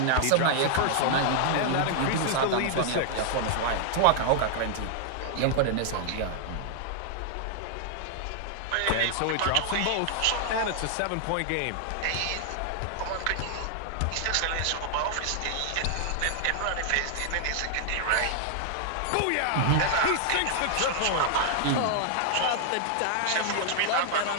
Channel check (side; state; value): both; different; correlation 0.00